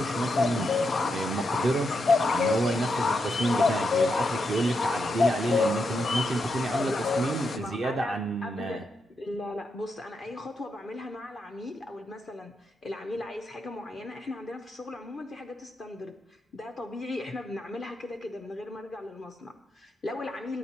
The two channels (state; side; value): normal; both; correlation 0.83